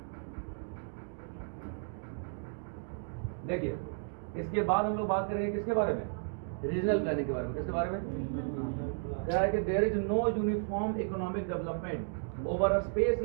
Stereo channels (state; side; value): silent; left; 55 dB below the other